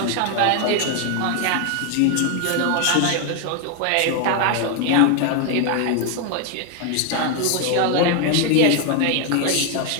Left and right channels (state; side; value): different; both; correlation 0.01